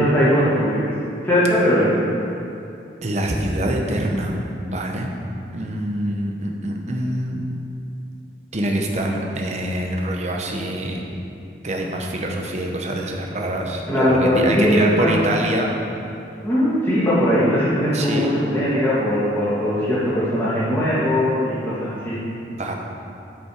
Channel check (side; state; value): both; normal; correlation 0.59